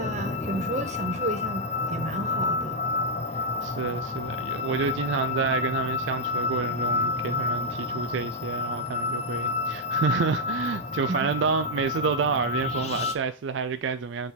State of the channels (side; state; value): both; normal; correlation -0.03